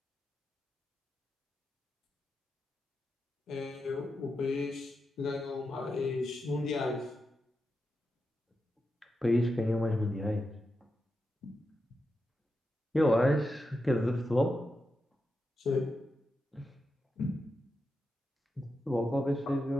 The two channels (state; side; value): normal; both; correlation 0.88